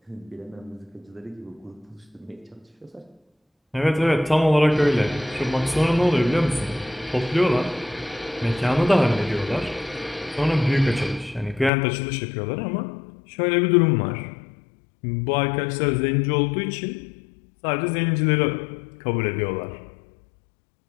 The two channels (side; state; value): right; drops out; at 11.7 s